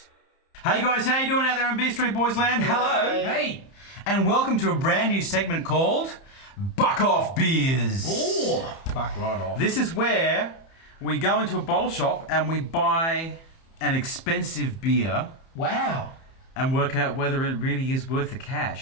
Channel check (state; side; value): late; right; 30 ms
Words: Hey guys, how you doing out there in BeerStreet Boys land? Hello! Hey! And welcome to a brand new segment called Buck Off Beers. Oh, buck right off. This is where we go into a bottle shop and we buy an expensive beer Wow. and work out whether it really is worth the